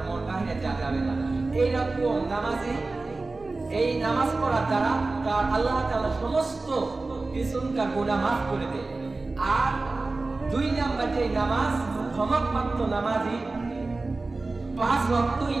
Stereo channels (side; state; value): left; quieter; 3.4 dB